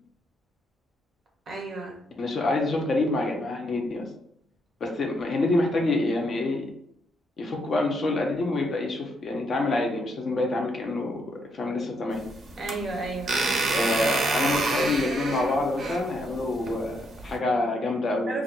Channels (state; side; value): normal; both; correlation 0.76